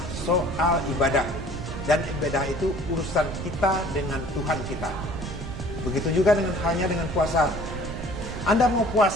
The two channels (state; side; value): noise; right; rumble, 8 dB below the sound